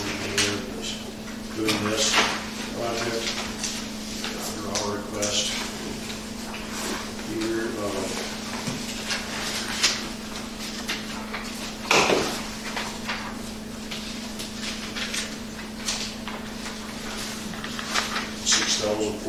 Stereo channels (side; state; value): both; identical; correlation 1.00